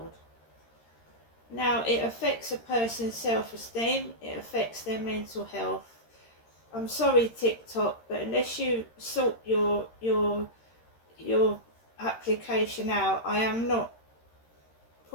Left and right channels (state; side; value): late; right; 13 ms